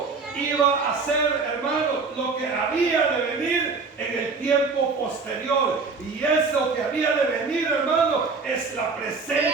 iba a ser, hermano, lo que había de venir en el tiempo posterior. Y eso que había de venir, hermano, es la presencia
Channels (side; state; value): left; quieter; 4.5 dB